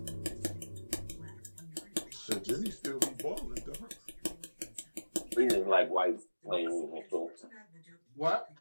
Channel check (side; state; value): both; inverted; correlation -1.00